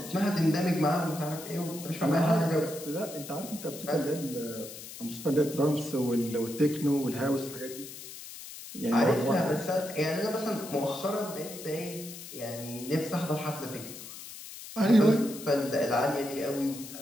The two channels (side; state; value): left; noise; hiss, 13 dB below the sound